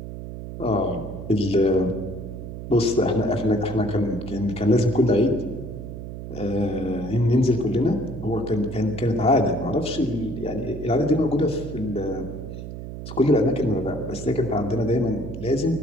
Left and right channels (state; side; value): noise; right; hum, 9 dB below the sound